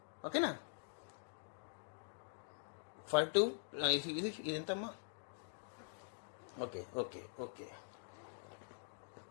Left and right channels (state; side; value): silent; right; digital silence